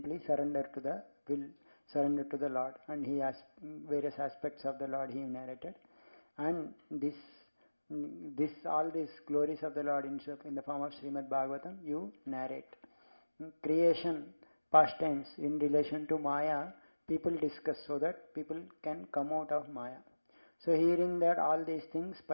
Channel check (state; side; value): inverted; both; correlation -1.00